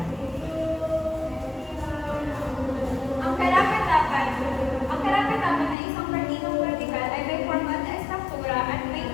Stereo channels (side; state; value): right; drops out; at 5.8 s